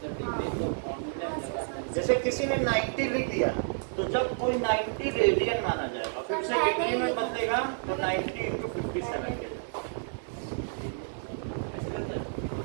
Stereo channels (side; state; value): left; silent; digital silence